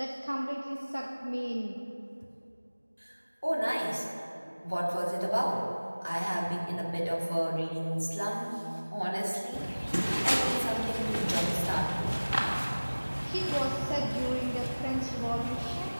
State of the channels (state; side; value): inverted; both; correlation -1.00